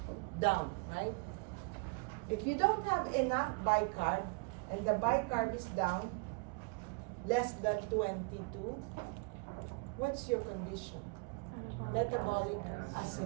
down, right? If you don't have enough bicarb, and the bicarb is down, less than 22, what's your condition? Metabolic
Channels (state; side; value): quieter; left; 30.4 dB